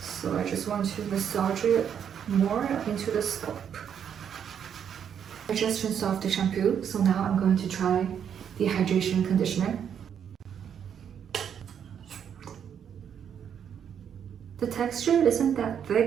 I just want to massage it more into the scalp. I just rinsed off the shampoo, so now I'm going to try the hydration conditioner. The texture isn't that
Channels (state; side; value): quieter; left; 8.3 dB